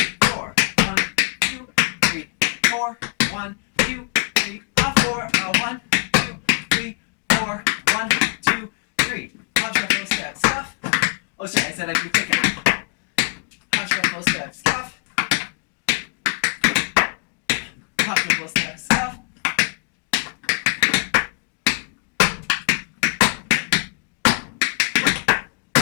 4. 1, 2, 3, 4. 1, 2, 3, 4. 1, 2, 3, 4. 1, 2, 3. Hop, shuffle, step, scuff. Oh, sorry, I said I'd do quicker. Hop, shuffle, step, scuff. Hop, shuffle, step, scuff.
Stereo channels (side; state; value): right; quieter; 38.4 dB